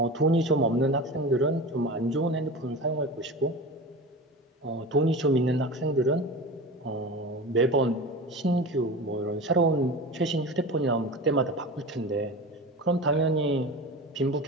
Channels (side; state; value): both; normal; correlation 0.31